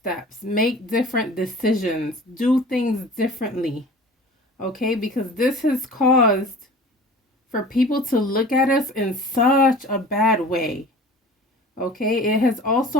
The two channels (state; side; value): normal; both; correlation 0.42